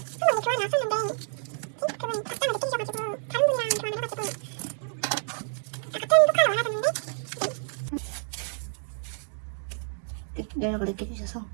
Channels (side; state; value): left; silent; digital silence